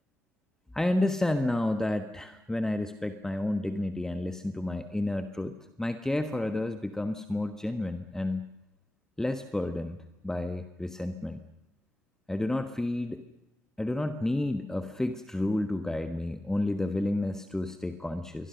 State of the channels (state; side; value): normal; both; correlation 0.95